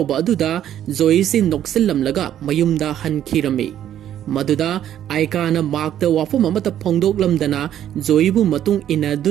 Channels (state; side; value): quieter; left; 10.9 dB